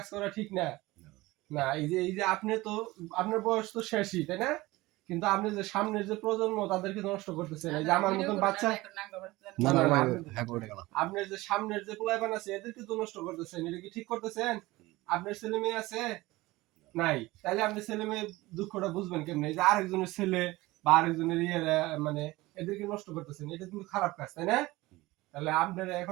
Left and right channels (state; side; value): quieter; left; 19.8 dB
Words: করা ঠিক না। না, এই যে আপনি তো, আপনার বয়স তো শেষই, তাই না? কিন্তু আপনি যে সামনের যে প্রজন্ম তাদেরকে নষ্ট করতেছেন। এই যে আমার মতন বাচ্চা, না না ভাই, আপনার যে সামনের যে পোলাপান আছে এদেরকে তো নষ্ট করতেছেন। এটা কি ঠিক করতেছেন? আপনার ছেলে মেয়ে আছে নাই, তাহলে আপনি ছেলে মেয়ে দুঃখটা বুঝবেন কেমনে? এই যে আরেকজনের ছেলে বা আরেকজনের মানে এদেরকে নষ্ট করতেছেন, এটা কিন্তু খারাপ কাজ, তাই না? তাহলে আপনারা